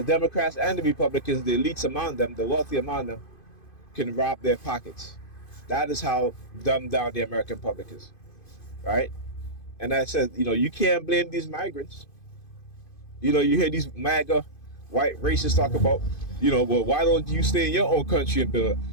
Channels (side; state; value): right; late; 2.5 ms